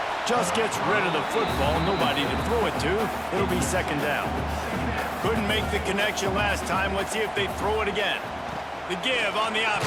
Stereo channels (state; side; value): identical; both; correlation 1.00